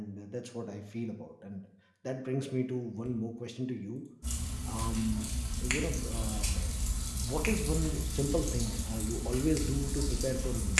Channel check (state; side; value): identical; both; correlation 1.00